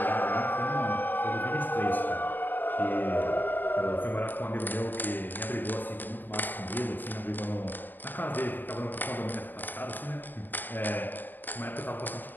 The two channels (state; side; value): late; right; 0.090 ms